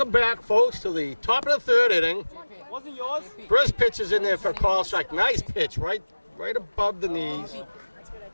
back, folks, to the top of the 3rd inning. Wasn't yours? First pitch is in there for a call strike. Nice pitch, right above the knees.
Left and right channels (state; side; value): inverted; both; correlation -1.00